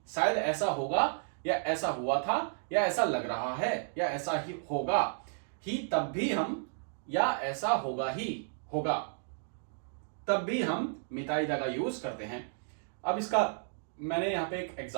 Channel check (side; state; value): left; silent; digital silence